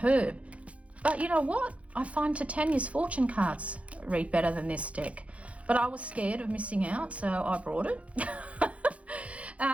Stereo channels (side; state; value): left; late; 0.064 ms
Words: But you know what? I find Titania's fortune cards read better than this deck. But I was scared of missing out, so I brought it.